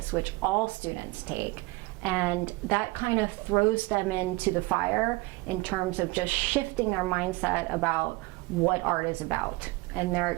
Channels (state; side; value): quieter; left; 22.4 dB